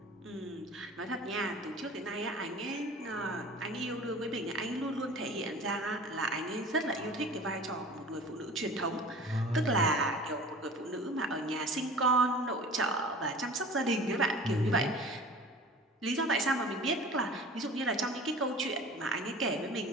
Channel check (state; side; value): normal; both; correlation 0.41